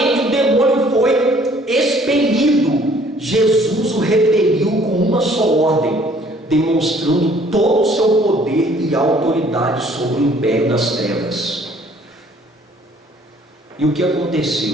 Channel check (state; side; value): normal; both; correlation 0.58